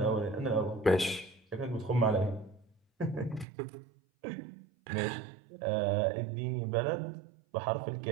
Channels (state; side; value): drops out; left; at 3.5 s